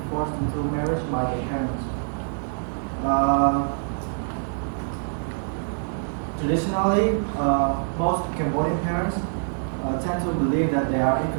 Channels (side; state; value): left; silent; digital silence